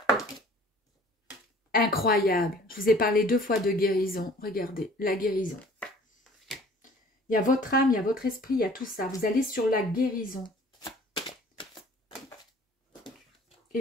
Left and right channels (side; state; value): both; normal; correlation 0.51